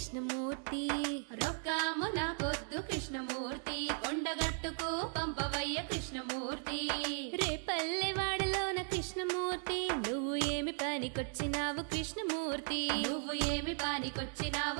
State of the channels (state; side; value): silent; left; 53 dB below the other